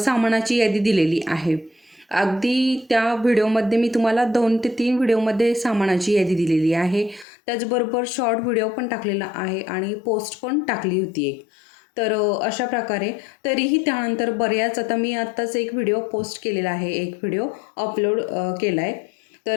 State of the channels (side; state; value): right; drops out; at 7.2 s